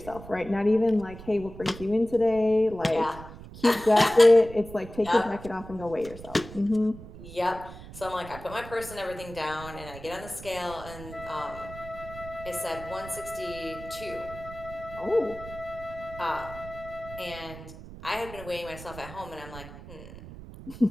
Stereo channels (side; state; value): right; noise; rumble, 14 dB below the sound